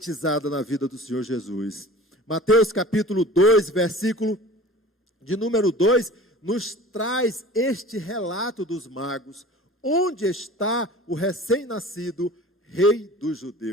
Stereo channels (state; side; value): normal; both; correlation 0.41